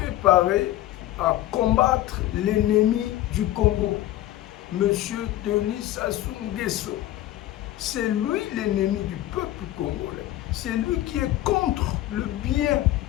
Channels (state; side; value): quieter; right; 14.6 dB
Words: à combattre l'ennemi du Congo, Monsieur Denis Sassou Nguesso. C'est lui l'ennemi du peuple congolais. C'est lui qui est contre le bien